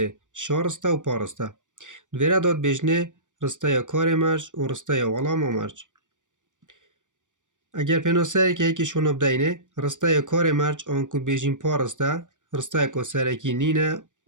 شارسته و پارسته دویره داد بجنه رسته یا کار مرج و رسته یا ولام و مرج. اگر پیناسه که یکی شون بدینه رسته یا کار مرج آن کد بیجین پارسته رسته که سرکی نینه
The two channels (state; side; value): late; left; 0.87 ms